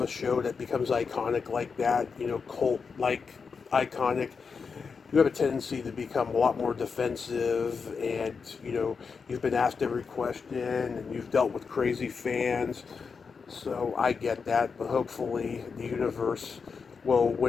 a show that becomes iconic like that, cult like iconic, you have a tendency to become a lot more defensive, and you've been asked every question and you've dealt with crazy fans. So I get that, but hopefully the universe will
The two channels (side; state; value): right; quieter; 5.4 dB